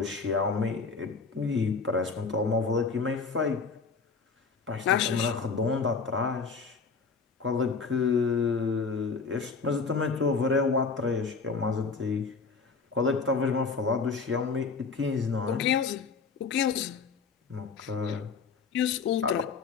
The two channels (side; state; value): right; quieter; 4.9 dB